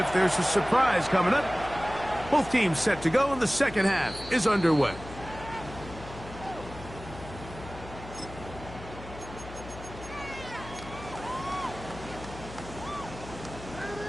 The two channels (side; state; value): left; noise; hum, 14 dB below the sound